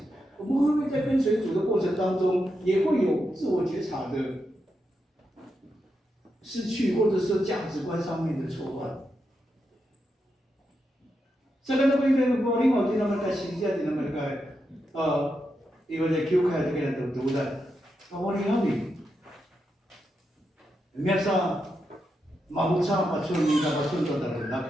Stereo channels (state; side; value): normal; both; correlation 0.85